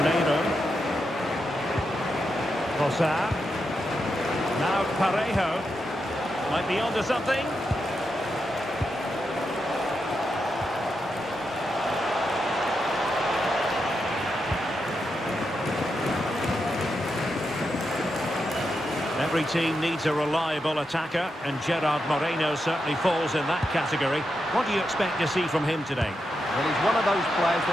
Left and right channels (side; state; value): both; normal; correlation 0.85